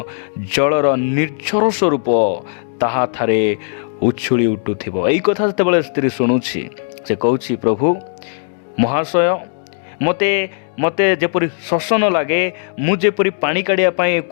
जलर निर्झर स्वरूप ताहा थारे उछुली उठुथिबो। एई कथा जेतेबेले स्त्री शुणुछि से कहउछि प्रभु महाशय मते जेपरि शोष न लागे, मु जेपरि पानी काढ़िया पाए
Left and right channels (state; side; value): silent; right; digital silence